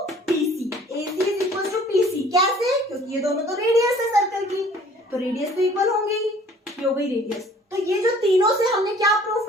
PC, AC is equal to PC। कैसे, क्योंकि ये दोनों तो रेडियस है सर्कल की, तो रेडियस तो इक्वल होंगी, ये हो गई रेडियस। तो ये जो तीनों से हमने क्या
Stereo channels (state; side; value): normal; both; correlation 0.53